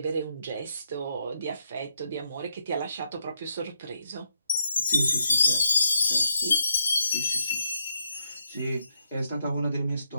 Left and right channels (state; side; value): inverted; both; correlation -0.79